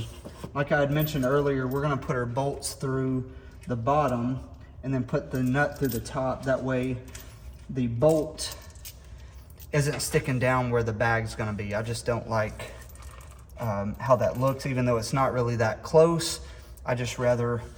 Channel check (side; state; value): both; identical; correlation 1.00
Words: Like I had mentioned earlier, we're gonna put our bolts through the bottom and then put the nut through the top. That way the bolt isn't sticking down where the bag's gonna be. I just don't like how that looks, even though it's not really that close. I just rather